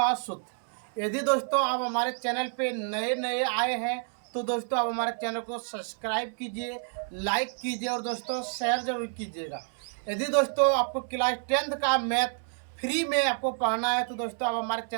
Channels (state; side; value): silent; left; 59 dB below the other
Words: सूत्र। यदि दोस्तों आप हमारे चैनल पे नए नए आए हैं तो दोस्तों आप हमारे चैनल को सब्सक्राइब कीजिए, लाइक कीजिए और दोस्तों शेयर जरूर कीजिएगा। यदि दोस्तों आपको क्लास 10th का मैथ फ्री में आपको पढ़ना है तो दोस्तों आप हमारे